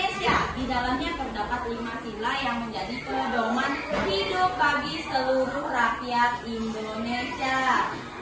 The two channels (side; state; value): both; identical; correlation 1.00